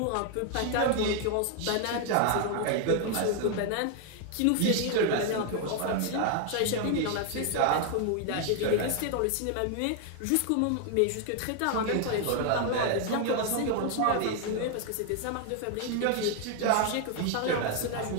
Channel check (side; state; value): both; different; correlation 0.01